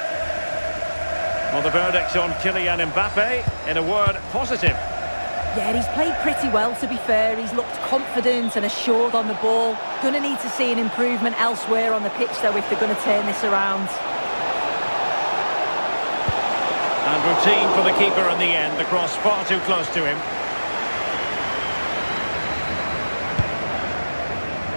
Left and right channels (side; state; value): both; inverted; correlation -1.00